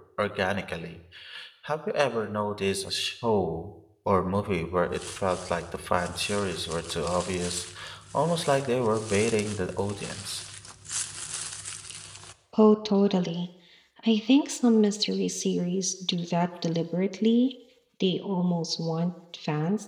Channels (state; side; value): identical; both; correlation 1.00